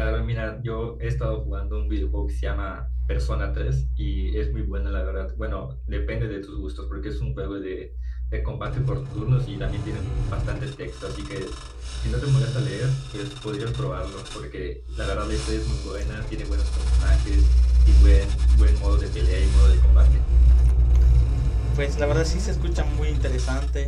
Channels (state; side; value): identical; both; correlation 1.00